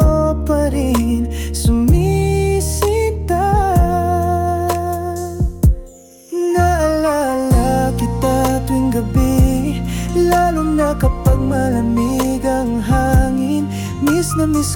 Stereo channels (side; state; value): both; identical; correlation 1.00